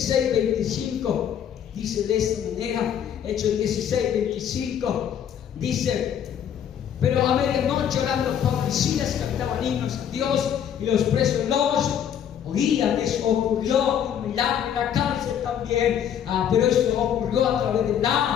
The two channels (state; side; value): quieter; right; 9.1 dB